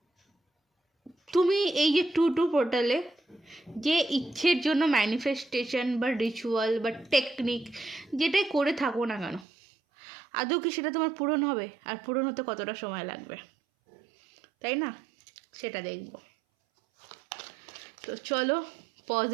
তুমি এই যে টু পোর্টালে যে ইচ্ছের জন্য ম্যানিফেস্টেশন বা রিচুয়াল বা টেকনিক যেটাই করে থাকো না কেন, আদৌ কি সেটা তোমার পূরণ হবে? আর পূরণ হতে কতটা সময় লাগবে, তাই না? সেটা দেখব। তো চলো,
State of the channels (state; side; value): drops out; left; at 9.5 s